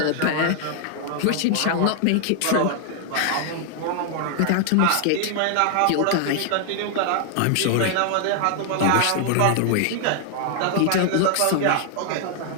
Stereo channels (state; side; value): different; both; correlation 0.00